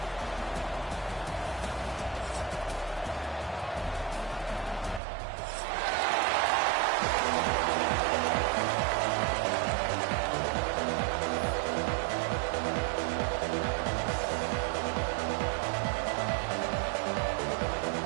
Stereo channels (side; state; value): left; drops out; at 5.0 s